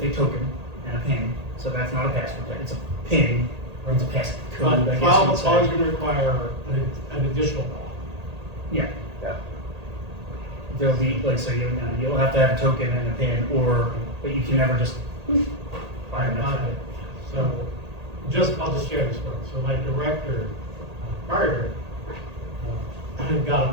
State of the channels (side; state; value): left; late; 1.8 ms